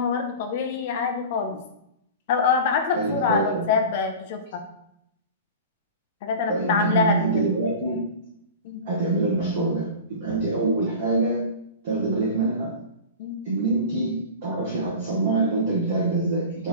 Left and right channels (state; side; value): inverted; both; correlation -0.33